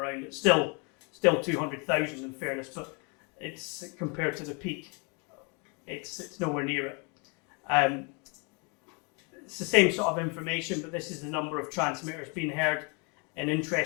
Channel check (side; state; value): right; quieter; 33.5 dB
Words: It's still 200,000 in fairness, but it's compared to the peak, it's nowhere near it. It's the same sort of information, but this is the number of transmitters being heard, and